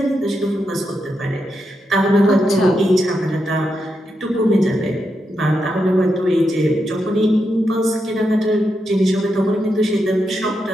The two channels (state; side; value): normal; both; correlation 0.84